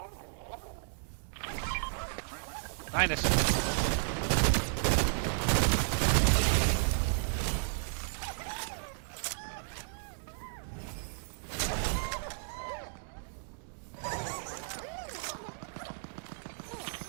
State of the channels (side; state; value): left; silent; digital silence